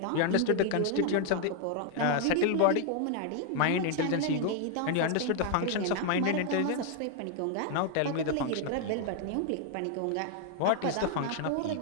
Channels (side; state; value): both; different; correlation 0.00